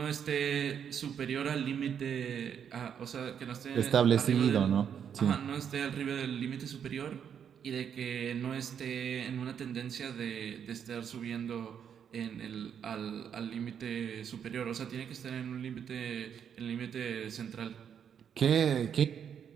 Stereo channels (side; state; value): left; quieter; 8.1 dB